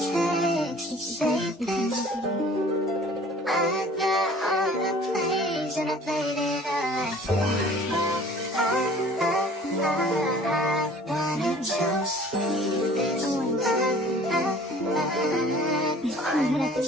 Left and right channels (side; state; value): both; normal; correlation 0.49